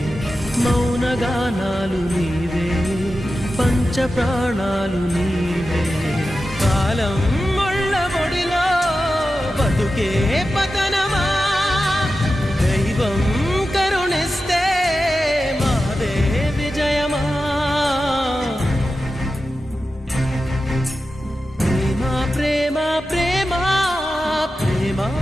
మౌనగానాలు నీవే, పంచ ప్రాణాలు నీవే. కాలం ముళ్ళ ఒడిలో బతుకే పతనమా, దైవం కరుణిస్తే మాదే విజయమా. ప్రేమ ప్రేమ ప్రేమ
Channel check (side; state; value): both; normal; correlation 0.92